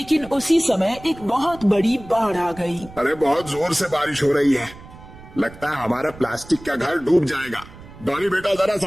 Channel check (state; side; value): noise; right; rumble, 19 dB below the sound